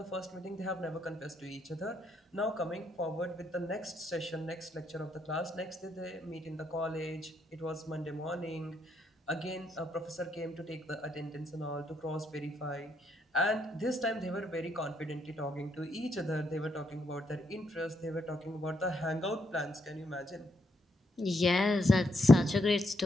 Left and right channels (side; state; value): both; normal; correlation 0.76